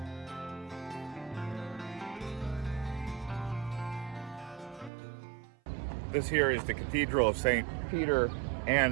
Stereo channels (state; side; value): drops out; left; at 4.9 s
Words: This here is the Cathedral of St. Peter